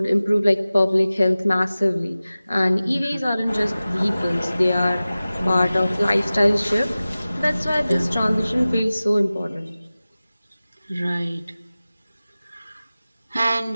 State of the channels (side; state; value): both; inverted; correlation -0.97